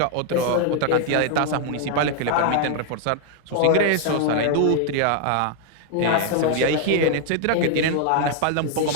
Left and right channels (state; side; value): different; both; correlation 0.00